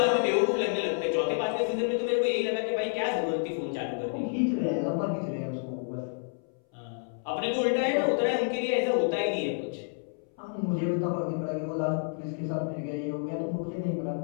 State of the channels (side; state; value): right; silent; 58 dB below the other